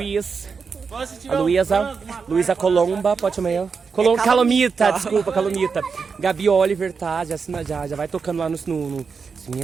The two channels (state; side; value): quieter; left; 5.4 dB